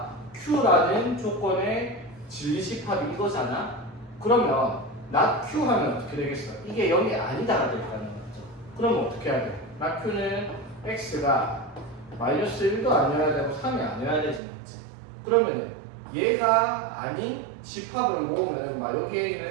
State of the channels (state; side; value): drops out; left; at 14.4 s